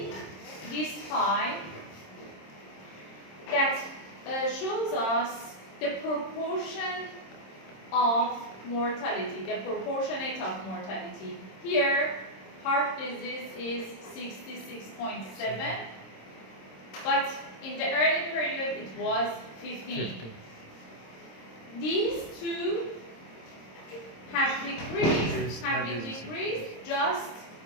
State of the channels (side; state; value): right; late; 26 ms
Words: this pie that shows us the proportion of mortality, the proportionate of mortality. Here, heart disease is 66.7, but in the early period it was 15. 50. These two have been decreased just